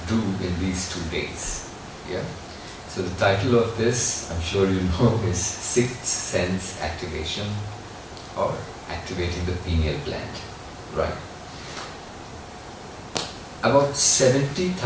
do in these 2 days. Yeah. So the title of this, I'm sure you know, is Sixth Sense Activation, or Activating the Pineal Gland. Right. About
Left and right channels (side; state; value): both; identical; correlation 1.00